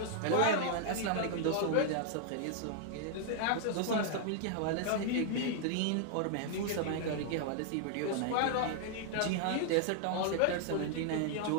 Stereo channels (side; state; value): both; different; correlation 0.00